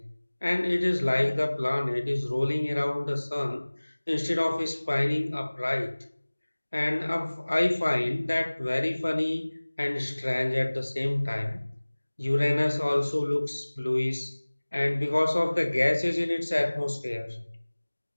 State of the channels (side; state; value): both; inverted; correlation -1.00